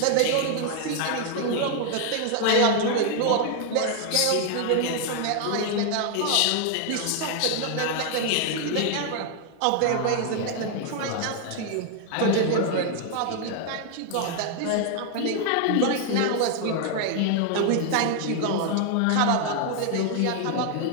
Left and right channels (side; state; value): both; different; correlation 0.00